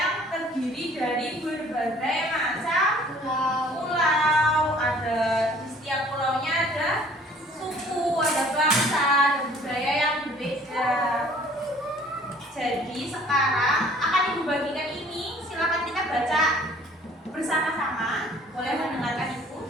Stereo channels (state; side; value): normal; both; correlation 0.54